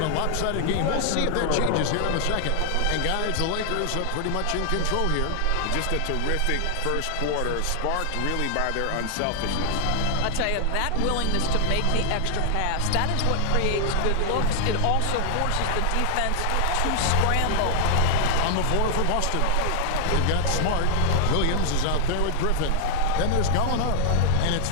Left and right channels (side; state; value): both; different; correlation 0.00